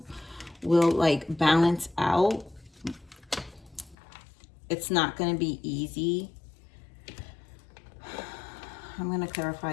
like balance out. It's not going to be easy. I'm going to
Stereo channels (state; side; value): drops out; right; at 4.0 s